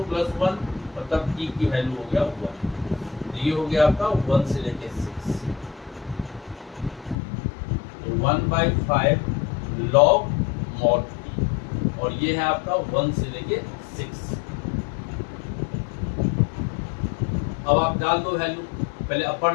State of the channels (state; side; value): drops out; right; at 7.2 s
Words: + 1, और तब t की वैल्यू हो गया 1। तो ये हो गया आपका 1 से लेके 6, तो 1/5 log mod t, और ये है आपका 1 से लेके 6। अब आप डाल दो वैल्यू, पहले अपर